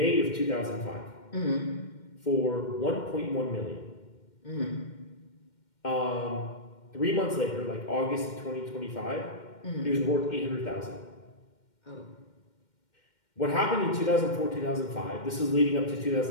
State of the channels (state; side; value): late; right; 2.1 ms